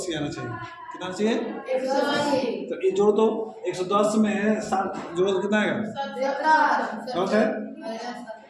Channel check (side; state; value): both; identical; correlation 1.00